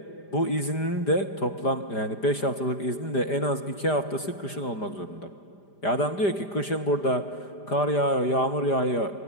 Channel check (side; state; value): right; late; 5.0 ms